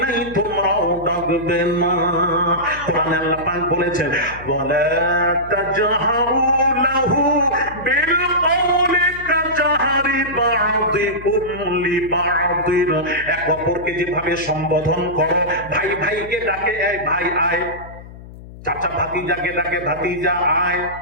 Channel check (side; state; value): left; noise; hum, 16 dB below the sound